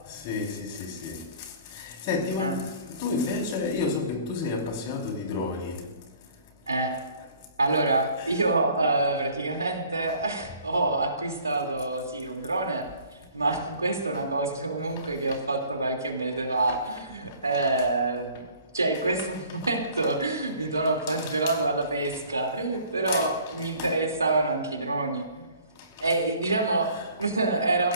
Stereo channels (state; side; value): inverted; both; correlation -0.53